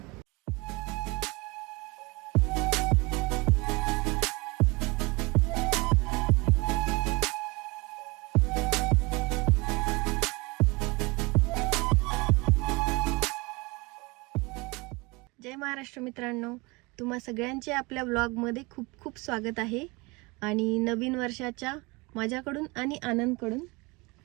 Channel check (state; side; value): quieter; left; 25.8 dB